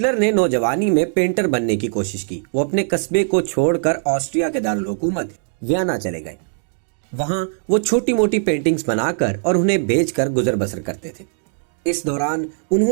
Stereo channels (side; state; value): left; silent; digital silence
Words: ने नौजवानी में पेंटर बनने की कोशिश की। वो अपने कस्बे को छोड़कर ऑस्ट्रिया के दारुल हुकूमत वियना चले गए। वहां वो छोटी मोटी पेंटिंग्स बनाकर और उन्हें बेचकर गुजर बसर करते थे। इस दौरान